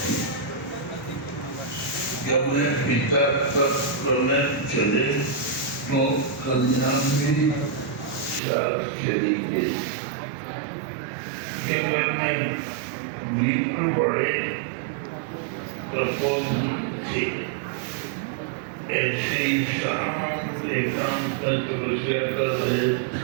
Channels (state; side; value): drops out; left; at 8.4 s